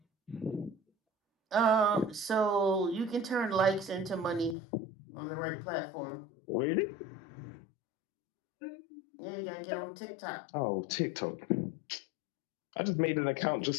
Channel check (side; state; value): right; drops out; at 4.5 s